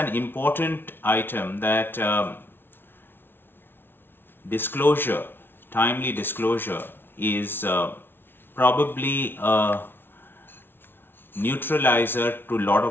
important item that disclosure, timely disclosure is probably a neutralizer to a lot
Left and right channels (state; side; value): late; right; 0.11 ms